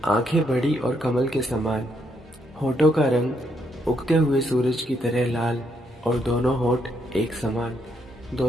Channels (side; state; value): both; normal; correlation 0.75